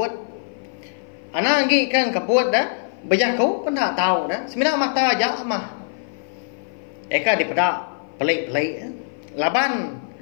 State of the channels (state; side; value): silent; right; 55 dB below the other